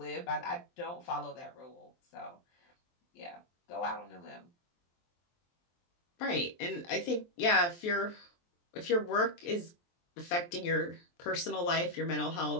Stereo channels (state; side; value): late; right; 23 ms